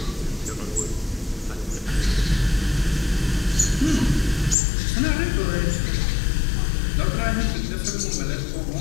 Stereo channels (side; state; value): right; drops out; at 4.5 s